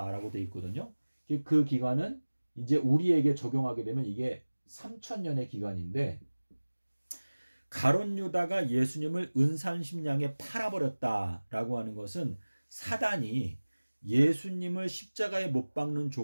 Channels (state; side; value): inverted; both; correlation -1.00